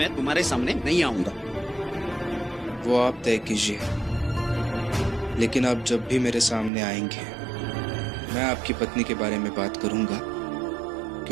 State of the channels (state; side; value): drops out; left; at 6.7 s